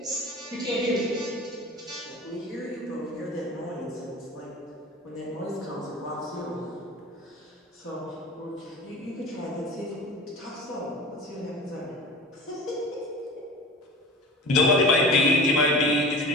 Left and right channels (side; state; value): both; normal; correlation 0.36